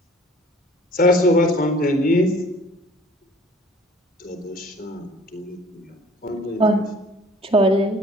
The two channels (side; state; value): both; normal; correlation 0.51